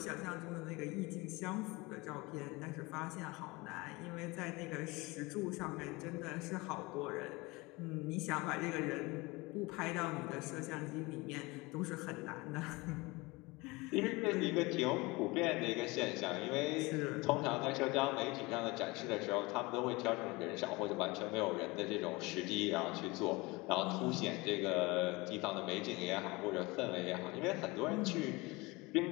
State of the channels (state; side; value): quieter; right; 23.8 dB